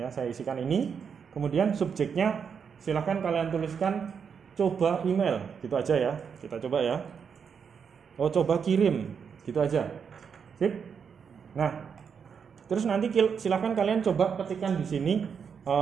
saya isikan ini. Kemudian subjeknya silahkan kalian tuliskan coba email, gitu aja ya. Kita coba ya, coba kirim, gitu aja. Sip. Nah, terus nanti silahkan kalian coba ketikkan di sini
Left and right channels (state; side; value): quieter; left; 6.7 dB